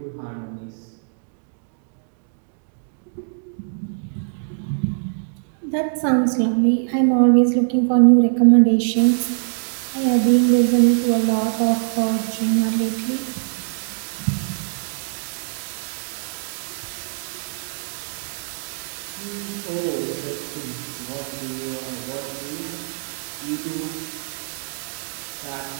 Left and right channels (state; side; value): silent; left; digital silence